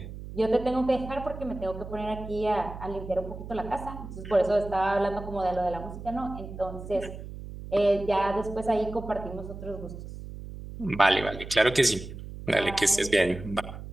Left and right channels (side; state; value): right; noise; hum, 11 dB below the sound